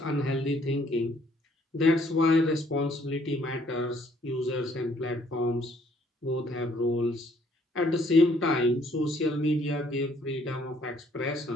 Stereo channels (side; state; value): both; normal; correlation 0.64